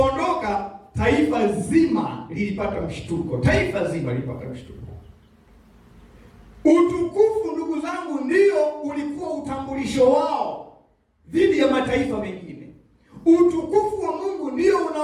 taifa zima lilipata mshtuko. Utukufu, ndugu zangu, ndio ulikuwa utambulisho wao dhidi ya mataifa mengine. Utukufu wa Mungu ndio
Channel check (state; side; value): identical; both; correlation 1.00